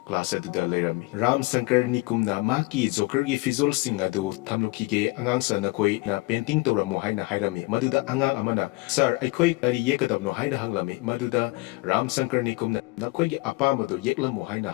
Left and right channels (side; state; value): right; quieter; 23.9 dB